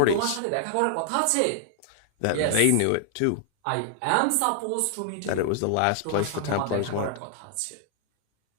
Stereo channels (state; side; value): different; both; correlation -0.01